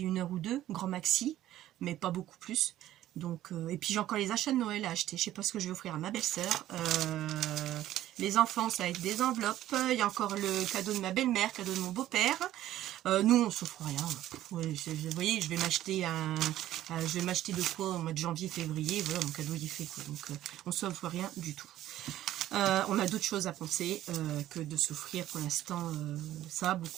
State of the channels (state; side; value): quieter; left; 13.5 dB